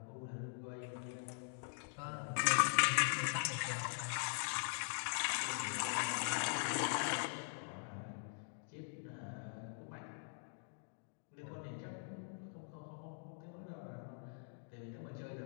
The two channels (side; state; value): right; silent; digital silence